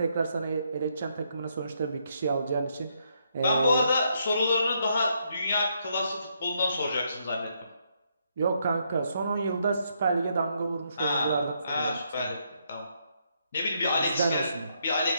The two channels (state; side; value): inverted; both; correlation -0.75